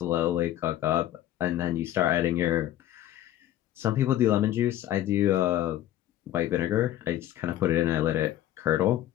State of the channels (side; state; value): right; quieter; 12.8 dB